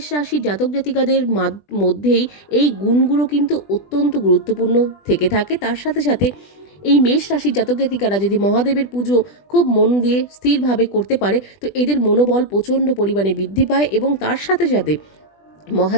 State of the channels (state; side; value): late; right; 20 ms